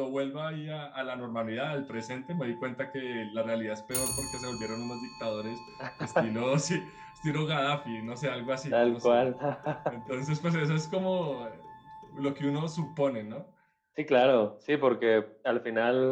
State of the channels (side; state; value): both; identical; correlation 1.00